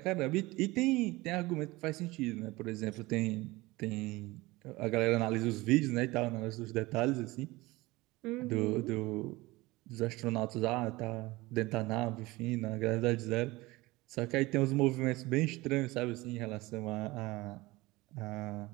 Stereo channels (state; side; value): quieter; left; 20.9 dB